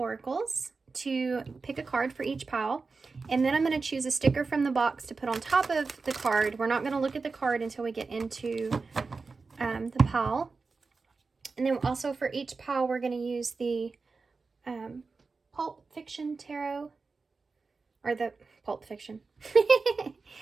to pick a card for each pile. And then I'm going to choose a sticker from the box to put on top of the card. We're not going to look at the card until we get into the pile. And then also for each pile, we're going to use the Pulp Fiction Tarot, or the Pulp Fiction,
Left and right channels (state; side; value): quieter; left; 4.3 dB